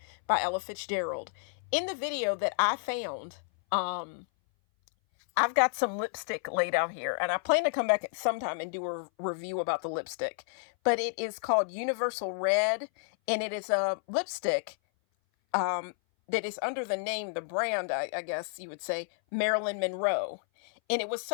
by Ella Fitzgerald. In the video that I found, I've got some lipstick laid out here, and I plan to come back sometime and do a review about the lipstick. But it is called Universal Red, and it is a lipstick that is under the name, the brand, I guess you would say, Marilyn Monroe. And it was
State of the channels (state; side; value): silent; right; 57 dB below the other